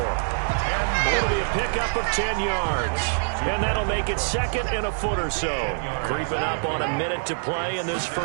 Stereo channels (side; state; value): left; silent; 62 dB below the other